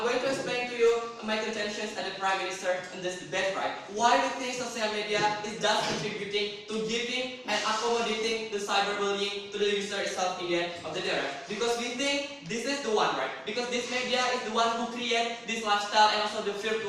going to explain to you my contentions as the Prime Minister in this debate, right? Why we think social media is thus contributing to giving and accommodating the cyberbullying to the user itself in the end of the day, right? Because we think this is the one, right? Because this media is the one who create this lifestyle and also the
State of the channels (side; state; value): both; identical; correlation 1.00